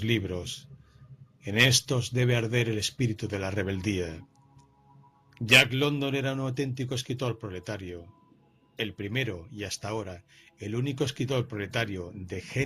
libros. En estos debe arder el espíritu de la rebeldía. Jack London era un auténtico escritor proletario, el primero y hasta ahora el único escritor proletario de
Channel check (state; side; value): identical; both; correlation 1.00